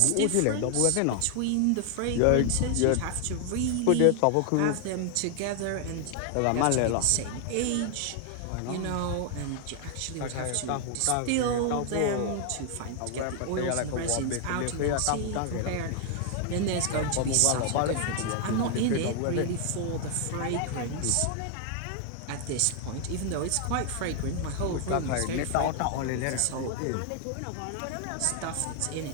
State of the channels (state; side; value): different; both; correlation 0.00